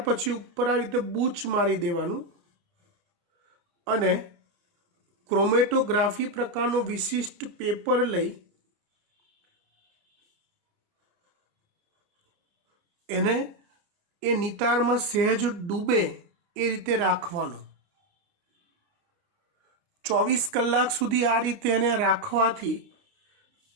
પછી ઉપર આવી રીતે બૂચ મારી દેવાનું અને ક્રોમેટોગ્રાફી પ્રકારનો વિશિષ્ટ પેપર લઈ એને એ નિતારમાં સહેજ ડૂબે એ રીતે રાખવાનું. 24 કલાક સુધી આ રીતે એને રાખવાથી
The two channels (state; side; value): late; left; 29 ms